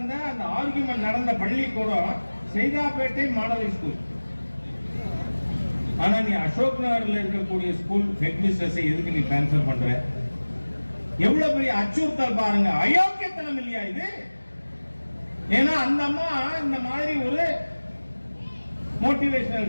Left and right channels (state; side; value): inverted; both; correlation -1.00